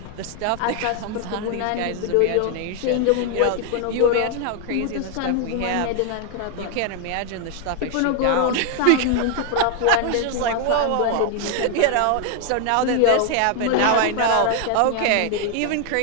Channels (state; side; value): different; both; correlation 0.00